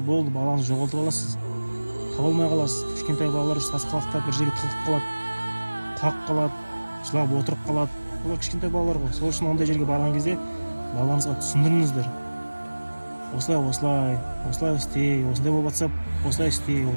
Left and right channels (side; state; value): both; inverted; correlation -1.00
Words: балаңызды жоғалтып аласыз. Таба алмай қаласыз. Кішкентай балалар сасқалақтап бір жерге тығылып қалады, құлап қалады, жылап отырып қалады. Олар кішкентай балалар ғой. Сол үшін ондай жерге барған кезде балаларыңызға түсіндіріңіздер. Осылай істей, осындай болып жатса, осылай істей,